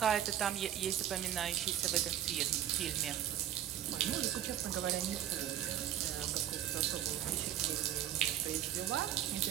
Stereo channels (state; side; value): quieter; left; 11.3 dB